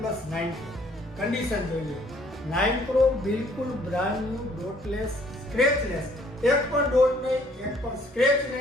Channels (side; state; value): both; normal; correlation 0.61